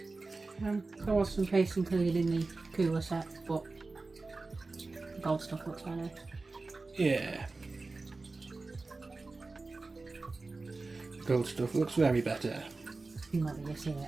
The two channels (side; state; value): left; quieter; 3.6 dB